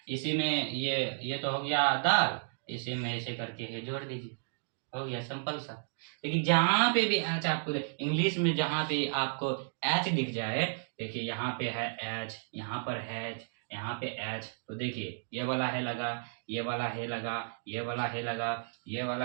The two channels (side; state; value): left; silent; digital silence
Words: इसी में ये तो हो गया दाल, इसी में ऐसे करके ये जोड़ दीजिए, हो गया सिंपल सा। लेकिन जहां पे भी एच आपको इंग्लिश में जहां पे आपको एच दिख जाए, देखिए यहाँ पे है एच, यहाँ पर है एच, यहाँ पे एच, तो देखिए ये वाला है लगा, ये वाला है लगा, ये वाला है लगा, ये